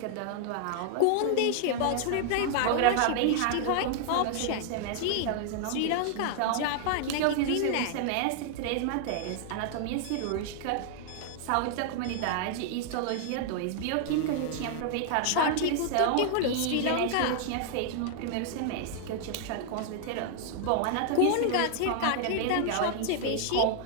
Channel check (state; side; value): different; both; correlation 0.00